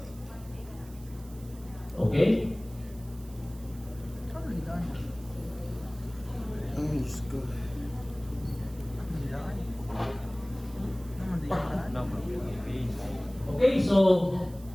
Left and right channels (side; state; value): right; noise; hiss, 23 dB below the sound